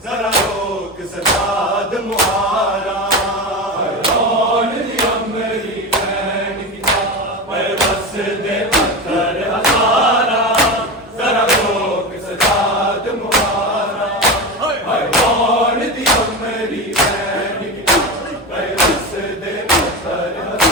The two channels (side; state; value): both; normal; correlation 0.22